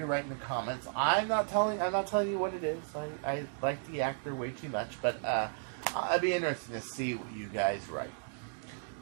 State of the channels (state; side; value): silent; left; digital silence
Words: write in the comments. I'm not telling you what it is. I like the actor way too much, but I'd be interested to see what you guys write.